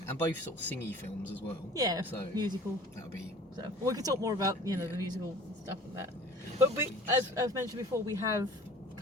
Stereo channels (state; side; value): normal; both; correlation 0.46